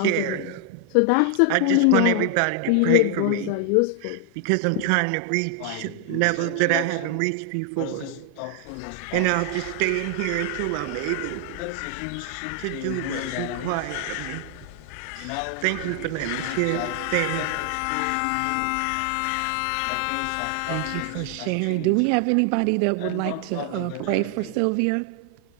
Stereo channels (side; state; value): both; different; correlation 0.00